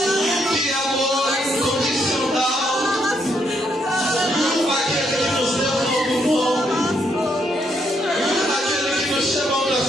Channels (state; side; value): normal; both; correlation 0.75